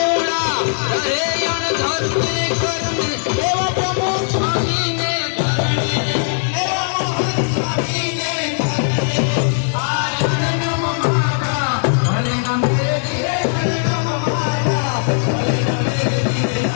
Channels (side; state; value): right; silent; 60 dB below the other